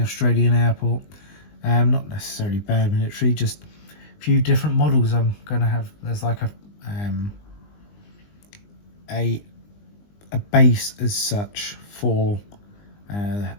Australian airport. Not necessarily bad military, just a few different models I'm going to have. There's like a base as such for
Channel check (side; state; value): right; late; 20 ms